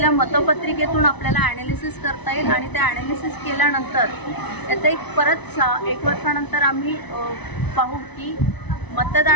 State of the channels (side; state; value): right; late; 1.0 ms